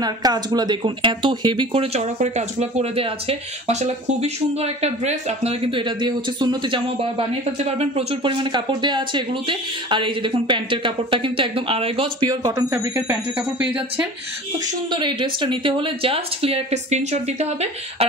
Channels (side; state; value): both; normal; correlation 0.40